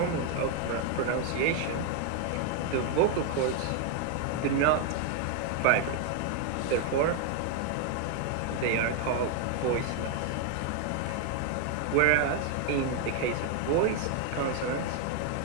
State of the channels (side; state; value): both; different; correlation 0.01